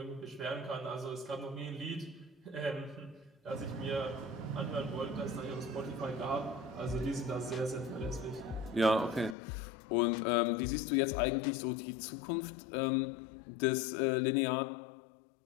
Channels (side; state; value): right; drops out; at 9.3 s